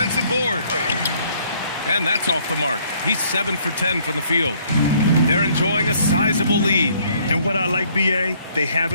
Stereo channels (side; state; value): both; inverted; correlation -0.63